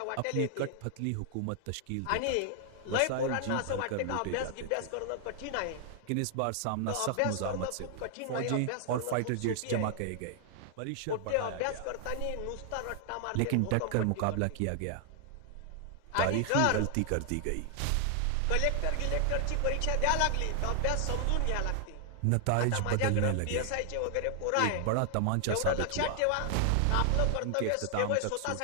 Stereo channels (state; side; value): different; both; correlation 0.00